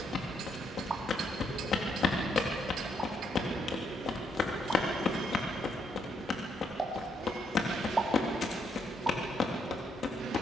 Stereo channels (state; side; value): normal; both; correlation 0.75